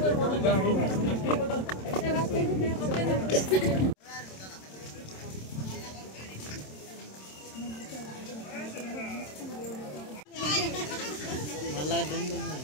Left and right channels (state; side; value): late; right; 27 ms